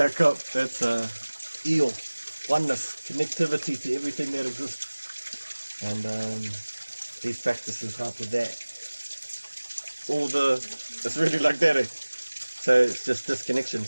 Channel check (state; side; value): inverted; both; correlation -1.00